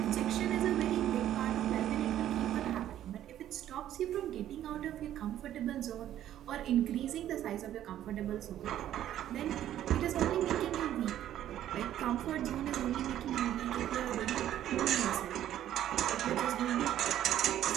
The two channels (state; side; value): quieter; left; 11.8 dB